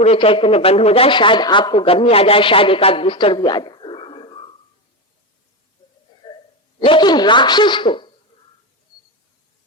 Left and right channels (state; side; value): normal; both; correlation 0.15